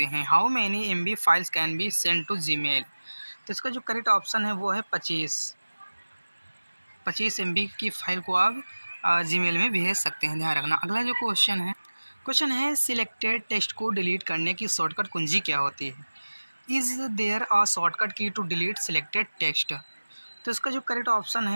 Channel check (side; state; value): both; inverted; correlation -1.00